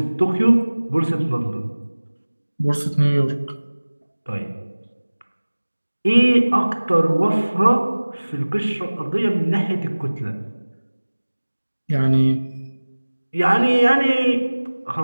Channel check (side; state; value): both; inverted; correlation -1.00